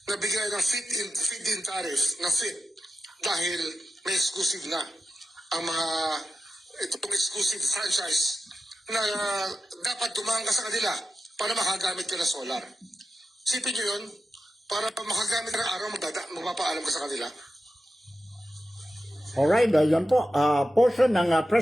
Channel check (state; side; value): normal; both; correlation 0.92